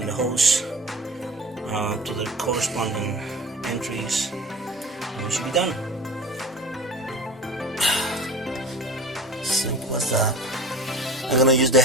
the hose to the corresponding entries, and we should be done. Simple as that. I'm gonna use the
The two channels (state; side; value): normal; both; correlation 0.37